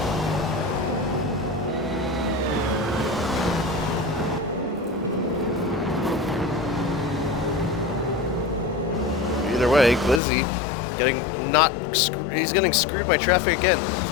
Either way, Glizzy he's getting screwed by traffic again. He's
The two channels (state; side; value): drops out; right; at 10.2 s